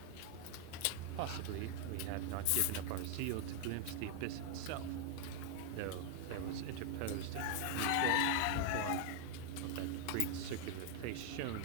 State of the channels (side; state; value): both; different; correlation 0.00